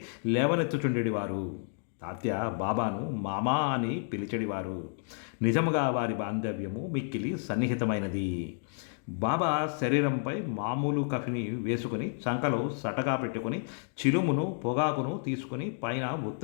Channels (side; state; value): right; silent; 57 dB below the other